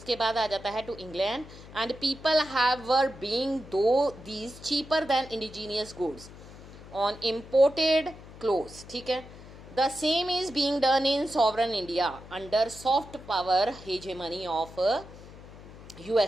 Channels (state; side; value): noise; left; hum, 17 dB below the sound